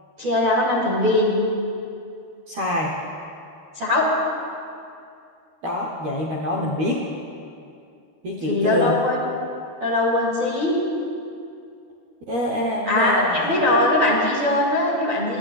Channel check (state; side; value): late; left; 13 ms